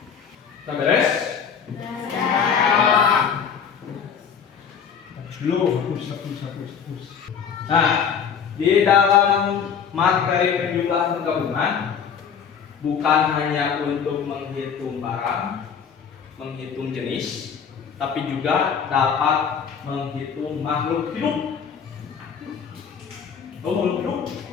Udah beres? Hapus. Nah, di dalam materi penjumlahan penggabungan bukan hanya untuk menghitung barang, menghitung jenis, tapi juga dapat menghitung makhluk hidup. Oh, makhluk hidup.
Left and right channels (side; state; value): right; quieter; 7.0 dB